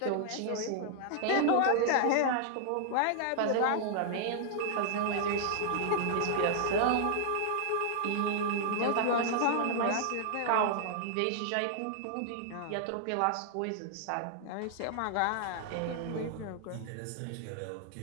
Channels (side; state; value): both; different; correlation 0.00